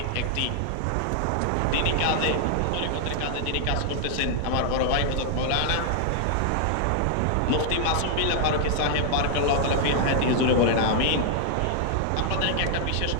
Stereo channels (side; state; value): both; different; correlation 0.00